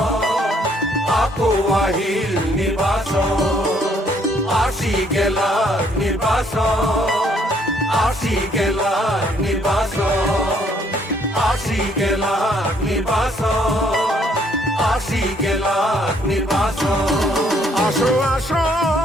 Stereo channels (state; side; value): normal; both; correlation 0.66